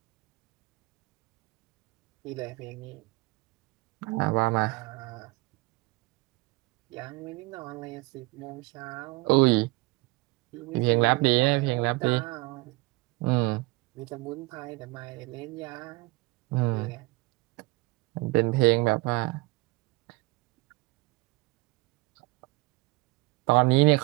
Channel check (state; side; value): quieter; left; 23.7 dB